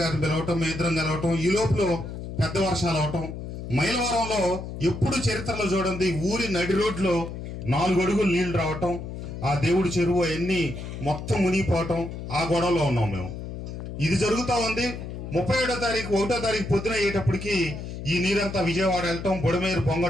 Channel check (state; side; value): noise; left; hum, 8 dB below the sound